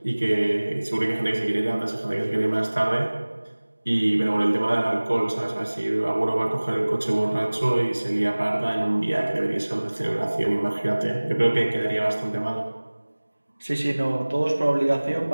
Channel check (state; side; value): inverted; both; correlation -1.00